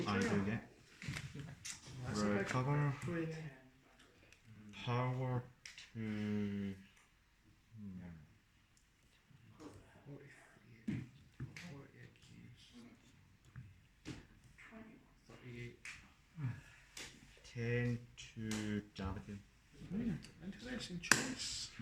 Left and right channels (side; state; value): both; identical; correlation 1.00